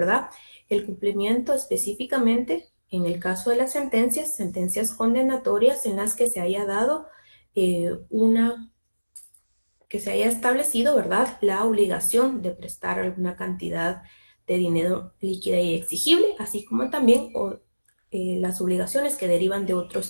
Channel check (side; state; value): both; inverted; correlation -1.00